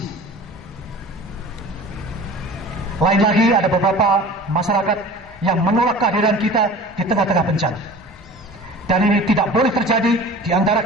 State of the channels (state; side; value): normal; both; correlation 0.40